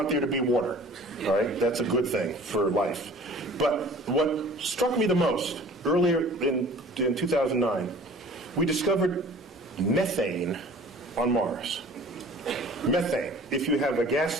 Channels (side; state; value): both; normal; correlation 0.46